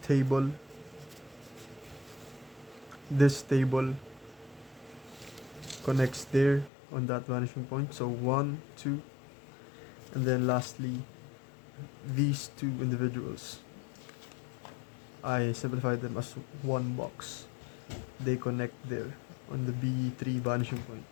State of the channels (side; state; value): right; drops out; at 6.7 s